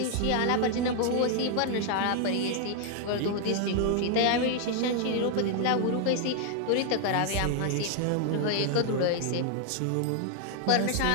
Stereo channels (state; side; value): different; both; correlation 0.00